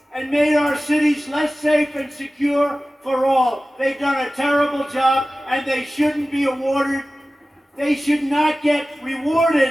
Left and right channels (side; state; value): both; normal; correlation 0.96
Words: and made our cities less safe and secure for all. They've done a terrible job, and they shouldn't be awarded. They should not get